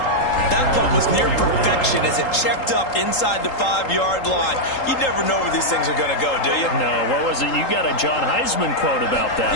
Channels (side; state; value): right; late; 3.8 ms